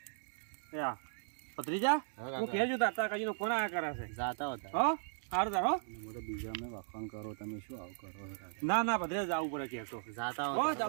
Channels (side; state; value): left; silent; digital silence